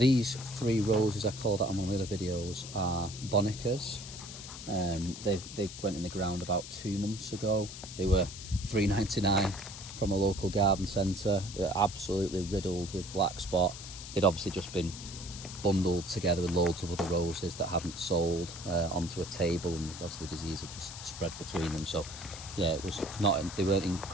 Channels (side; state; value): left; noise; hiss, 11 dB below the sound